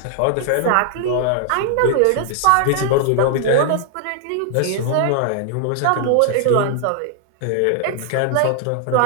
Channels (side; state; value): both; different; correlation 0.00